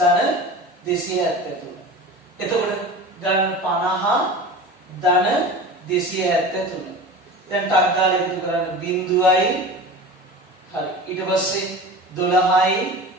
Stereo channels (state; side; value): normal; both; correlation 0.34